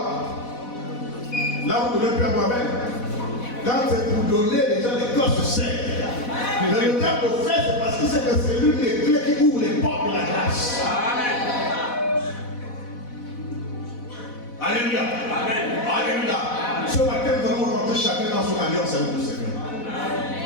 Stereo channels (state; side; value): late; right; 4.1 ms